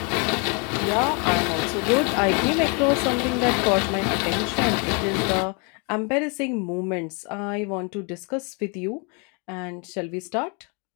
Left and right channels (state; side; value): quieter; right; 34.2 dB